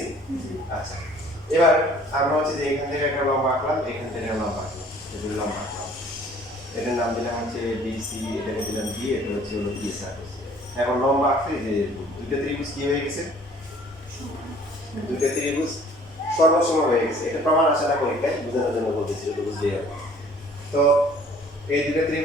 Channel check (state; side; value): normal; both; correlation 0.54